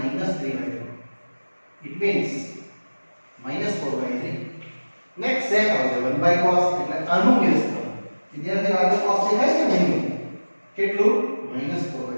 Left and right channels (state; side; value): inverted; both; correlation -1.00